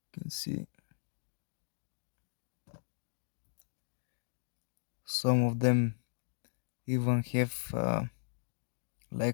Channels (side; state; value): right; silent; digital silence